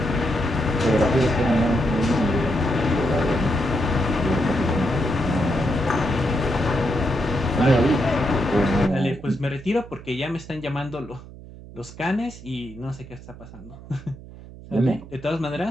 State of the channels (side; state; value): right; noise; hum, 17 dB below the sound